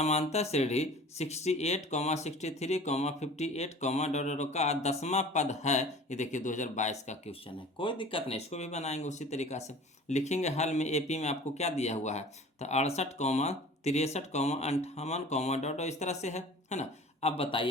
श्रेणी 68, 63, 58, डॉट का 10वां पद है। ये देखिए 2022 का क्वेश्चन है, कोई दिक्कत नहीं, इसको भी बनाएंगे उसी तरीका से। लिखेंगे हल में एपी में आपको क्या दिया हुआ है, तो 68, 63, 58, डॉट इस तरह से है ना। अब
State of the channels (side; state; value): both; normal; correlation 0.43